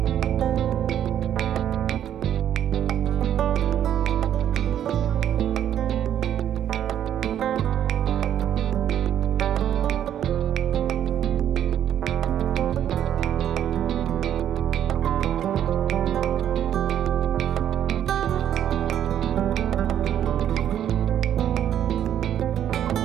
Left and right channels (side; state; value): left; quieter; 10.3 dB